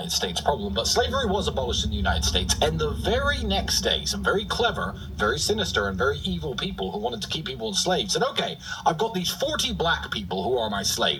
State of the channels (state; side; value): identical; both; correlation 1.00